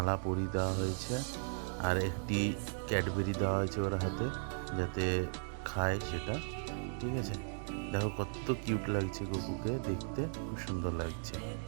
পরিয়ে দেওয়া হয়েছে, আর একটি ক্যাডবেরি দেওয়া হয়েছে ওর হাতে, যাতে খায় সেটা। ঠিক আছে, দেখো কত কিউট লাগছে গপুকে দেখতে, খুব সুন্দর লাগছে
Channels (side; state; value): left; silent; digital silence